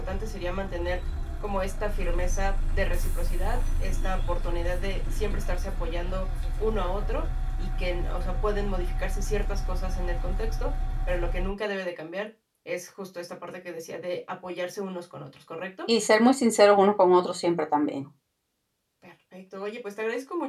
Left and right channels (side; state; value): both; identical; correlation 1.00